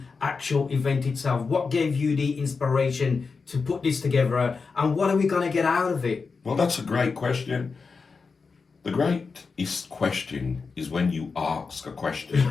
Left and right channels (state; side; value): quieter; right; 4.8 dB